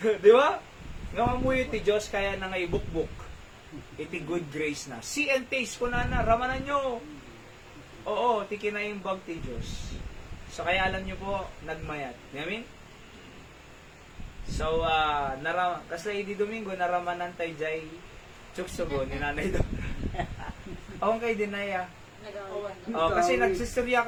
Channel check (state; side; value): identical; both; correlation 1.00